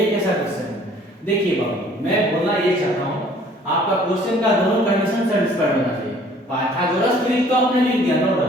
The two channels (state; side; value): normal; both; correlation 0.55